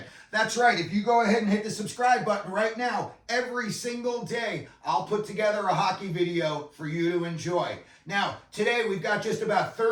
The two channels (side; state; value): both; identical; correlation 1.00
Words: That's right, if you go ahead and hit the subscribe button right now, every single day I'll put together a hockey video for you to enjoy. Now, today we've got just about